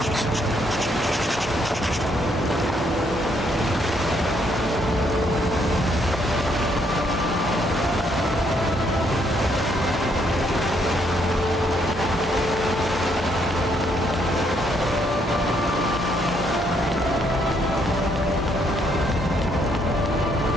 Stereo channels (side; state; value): both; normal; correlation 0.71